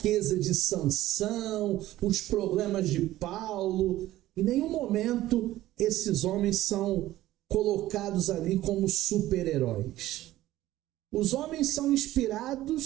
de Sansão, os problemas de Paulo. Em nenhum momento esses homens são colocados ali como super-heróis. Os homens são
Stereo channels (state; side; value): quieter; left; 15.2 dB